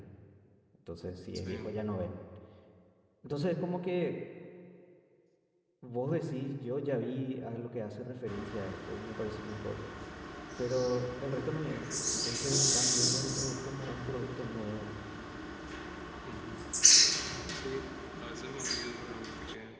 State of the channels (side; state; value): both; identical; correlation 1.00